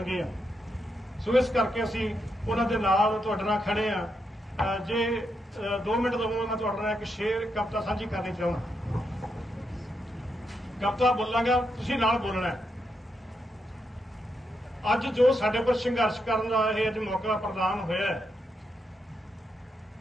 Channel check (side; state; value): both; normal; correlation 0.82